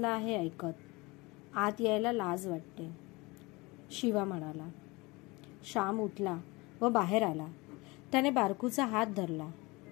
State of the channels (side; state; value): right; quieter; 24.1 dB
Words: आहे ऐकत. आत यायला लाज वाटते, शिवा म्हणाला. श्याम उठला व बाहेर आला. त्याने बारकूचा हात धरला.